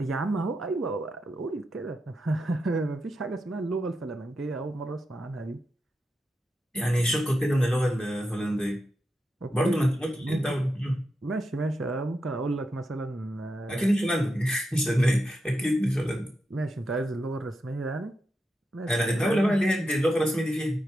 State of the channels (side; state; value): both; normal; correlation 0.87